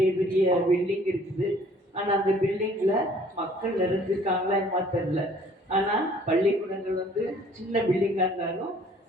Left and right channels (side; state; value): both; normal; correlation 0.56